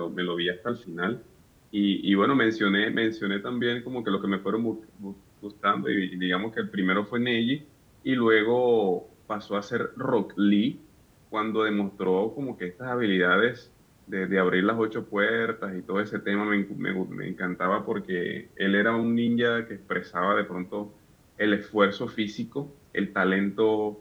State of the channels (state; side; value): identical; both; correlation 1.00